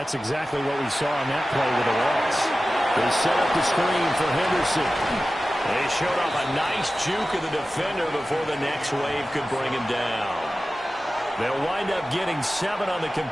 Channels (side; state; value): both; normal; correlation 0.95